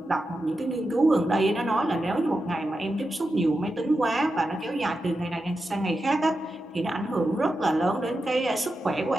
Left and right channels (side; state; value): both; normal; correlation 0.89